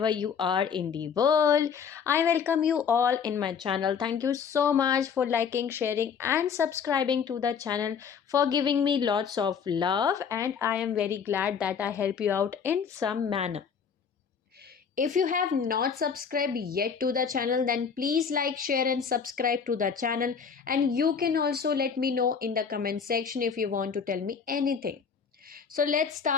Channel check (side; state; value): right; quieter; 6.6 dB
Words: you are in the world. I welcome you all in my channel. Thank you so much for liking, sharing, and subscribing to the channel, for giving me lots of love. And I am very glad that I help you out in some manner. If you have not subscribed yet to the channel, then please like, share, and subscribe to the channel. And you can also let me know in the comment section if you want to tell me anything. So let's